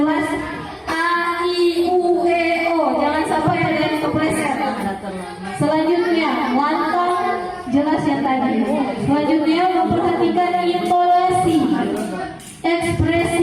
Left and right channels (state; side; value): identical; both; correlation 1.00